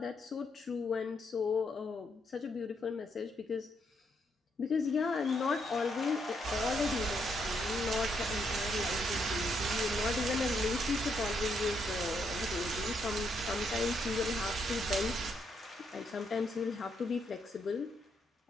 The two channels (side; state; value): both; normal; correlation 0.76